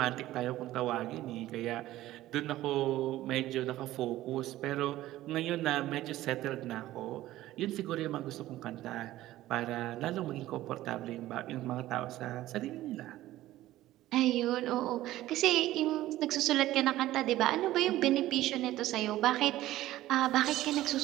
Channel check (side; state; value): left; quieter; 15.3 dB